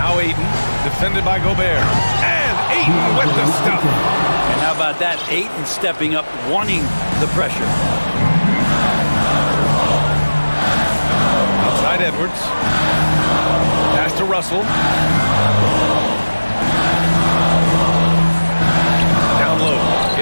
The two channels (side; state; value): both; inverted; correlation -1.00